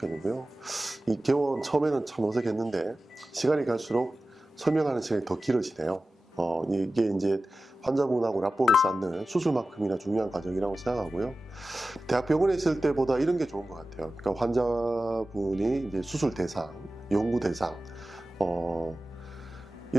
이 개원 처음에는 참 어색했는데 시간이 갈수록 설명하는 시간이 더 길어지네요. 이게 이제 환자분하고 라포를 쌓는 수술만큼이나 중요한 과정이라고 생각하고요. 대학병원에 있을 때보다 이런 게 좋은 것 같아요. 그러니까 환자분이 이제 수술 대상, 연구 대상,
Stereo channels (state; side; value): normal; both; correlation 0.95